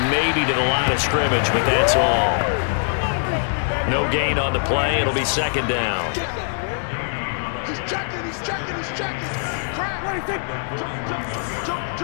maybe to the line of scrimmage, but that's all. No gain on the play. It'll be 2nd down. He's checking, he's checking, he's checking. Crap.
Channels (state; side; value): silent; right; 64 dB below the other